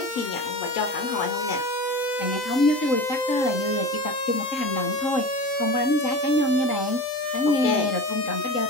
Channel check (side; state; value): right; late; 4.0 ms